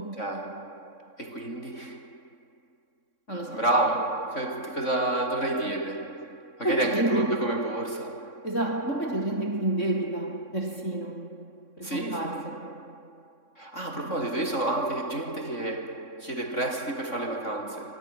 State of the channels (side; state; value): right; late; 3.6 ms